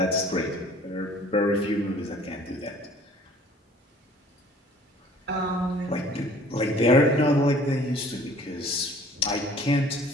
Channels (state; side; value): normal; both; correlation 0.52